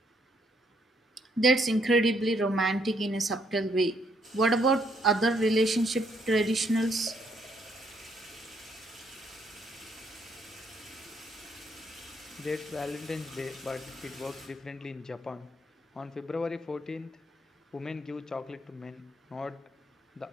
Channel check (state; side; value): normal; both; correlation 0.71